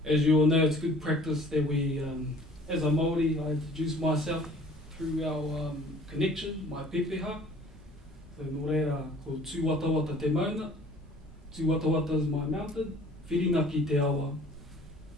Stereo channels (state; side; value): normal; both; correlation 0.51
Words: As you all know, it's good practice that we, as a Māori, I introduce myself through our connection, my pepeha. So nō reira, ko Tūwatawata te mauna. Tūwatawata is my mountain. Whiringa ki te awa.